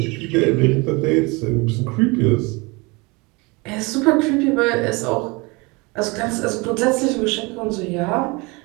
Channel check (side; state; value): left; quieter; 26.6 dB